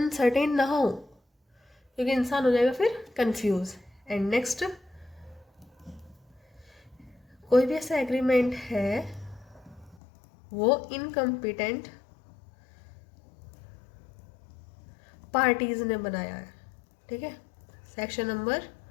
ना हो, क्योंकि इंसान हो जाएगा फिर कंफ्यूज। एंड नेक्स्ट, कोई भी ऐसा एग्रीमेंट है वो इनकम्पिटेंट पार्टीज ने बनाया है। ठीक है, सेक्शन नंबर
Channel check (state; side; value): drops out; right; at 10.0 s